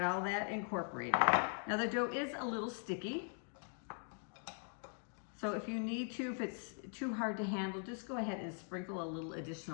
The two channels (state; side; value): silent; right; 50 dB below the other